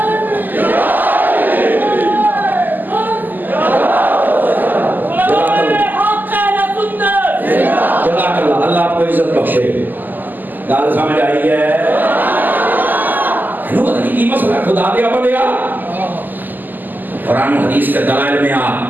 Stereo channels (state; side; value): late; left; 0.087 ms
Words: گال سمجھ آئی ہے یہ مسئلہ خدا دیا بنیا قرآن حدیث کے دلائل میں